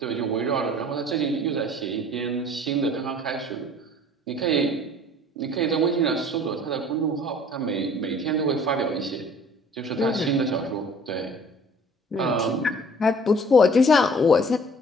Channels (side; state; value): both; normal; correlation 0.51